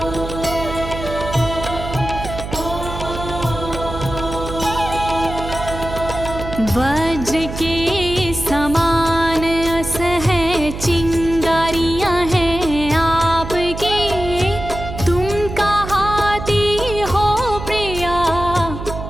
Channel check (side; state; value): right; noise; hum, 8 dB below the sound